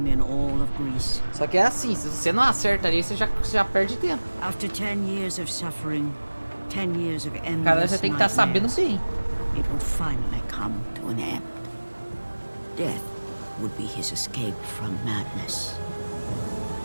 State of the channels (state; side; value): inverted; both; correlation -1.00